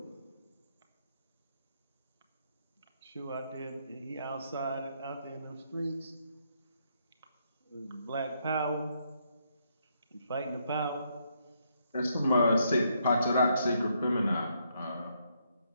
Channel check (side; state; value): both; inverted; correlation -0.75